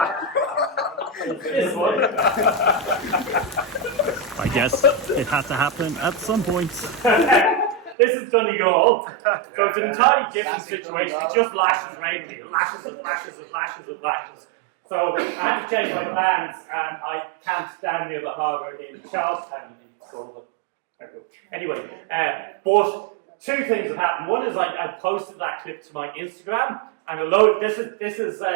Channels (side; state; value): left; drops out; at 8.0 s